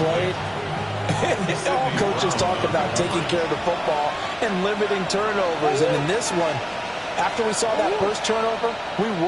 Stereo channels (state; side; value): identical; both; correlation 1.00